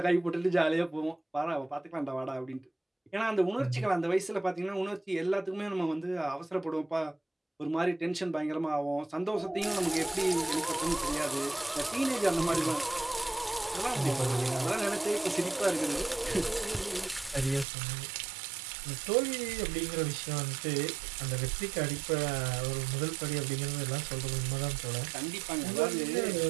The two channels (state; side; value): drops out; left; at 17.7 s